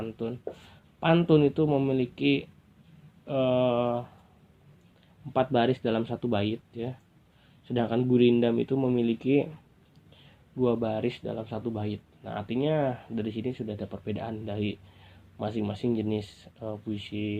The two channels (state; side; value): identical; both; correlation 1.00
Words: Pantun itu memiliki 4 baris dalam satu bait ya. Sedangkan gurindam itu memiliki 2 baris dalam satu bait. Nah, artinya dari sini sudah ada perbedaan dari masing-masing jenis